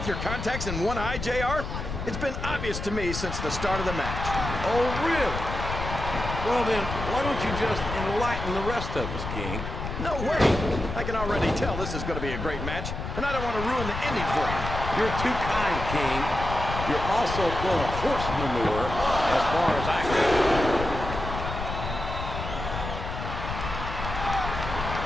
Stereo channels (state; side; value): noise; left; rumble, 6 dB below the sound